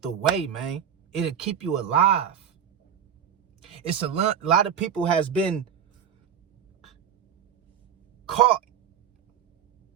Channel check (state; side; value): quieter; left; 8.4 dB